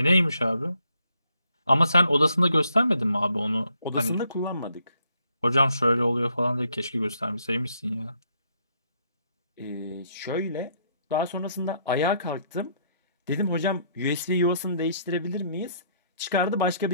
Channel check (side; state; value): both; inverted; correlation -0.70